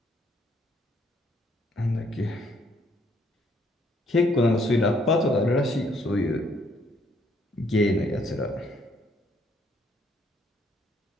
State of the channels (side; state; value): both; normal; correlation 0.68